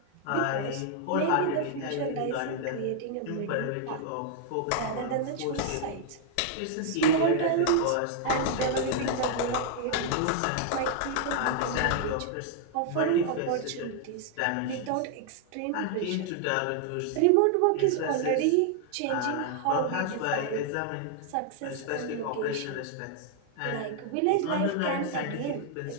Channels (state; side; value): different; both; correlation 0.00